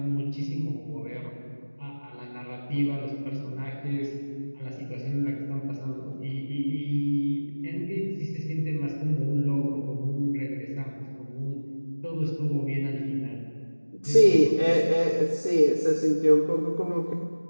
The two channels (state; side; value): inverted; both; correlation -1.00